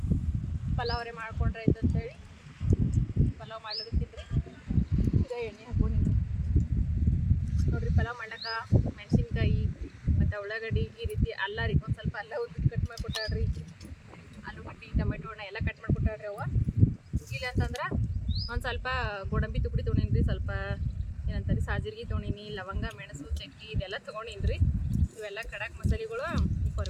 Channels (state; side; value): identical; both; correlation 1.00